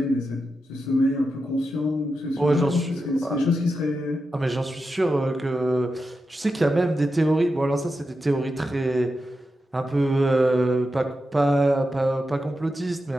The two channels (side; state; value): both; normal; correlation 0.89